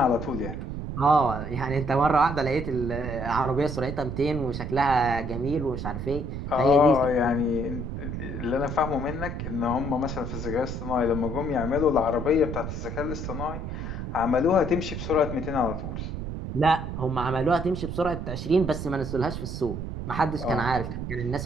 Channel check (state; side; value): noise; right; rumble, 5 dB below the sound